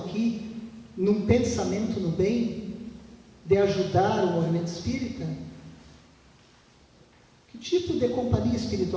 num pensamento no bem, de ajudar o movimento espírita, que tipo de companhia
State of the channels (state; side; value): identical; both; correlation 1.00